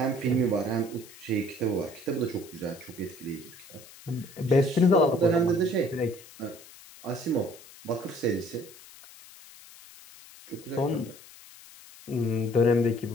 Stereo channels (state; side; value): noise; left; hiss, 20 dB below the sound